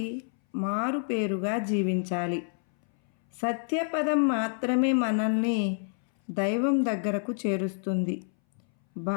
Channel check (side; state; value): right; silent; 59 dB below the other